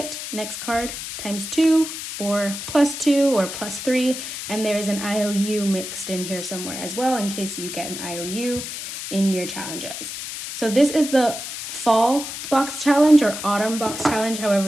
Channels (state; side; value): noise; left; hiss, 7 dB below the sound